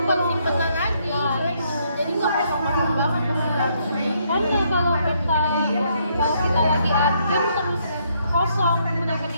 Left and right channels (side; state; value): both; inverted; correlation -0.72